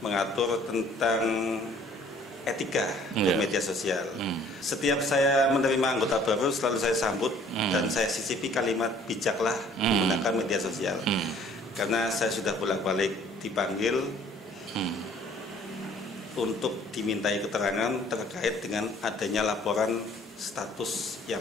tentang etika bermedia sosial. Setiap saya menerima anggota baru selalu saya sambut dan saya sisipi kalimat bijaklah menggunakan media sosial. Karena saya sudah bolak-balik dipanggil untuk dimintai keterangan terkait dengan adanya laporan status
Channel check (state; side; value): normal; both; correlation 0.56